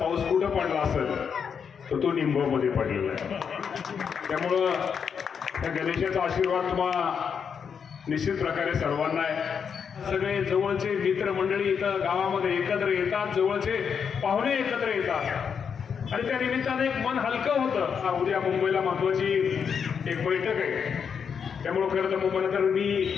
कुठं पडला असेल तर तो निमगावमध्ये पडलेला आहे। त्यामुळं त्या गणेशाचा आशीर्वाद तुम्हाला निश्चित प्रकारे सर्वांना आहे। सगळे जवळचे मित्रमंडळी इथं गावामध्ये एकत्र येतात, जवळचे पाहुणे एकत्र येतात आणि त्या निमित्ताने एक मन हलकं होतं। उद्या मुंबईला महत्त्वाची एक बैठक आहे, त्यामुळे खरं तर मुंबईला तर मी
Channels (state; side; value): quieter; right; 6.8 dB